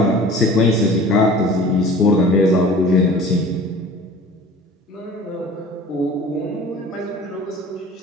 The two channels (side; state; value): both; normal; correlation 0.43